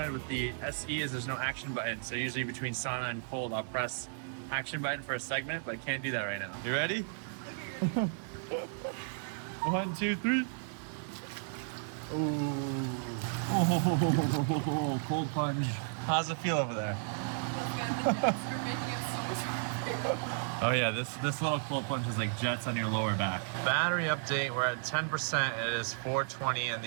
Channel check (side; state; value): left; silent; digital silence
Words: with the SE is there's no action button. So usually between sauna and cold, I'll press action button for a segment, but I can't do that right now. You ready? 1, 2, 3. Oh, cold plunge. How's it feel over there? Oh yeah, this little cold plunge is like jets on your lower back. Battery update, we're at 10%. It is 4:20 in